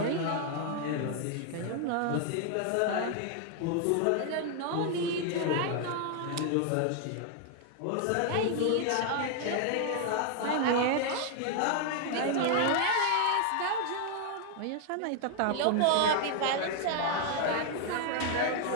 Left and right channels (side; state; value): both; different; correlation 0.00